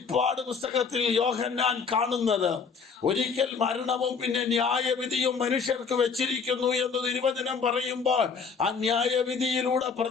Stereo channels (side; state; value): right; quieter; 5.6 dB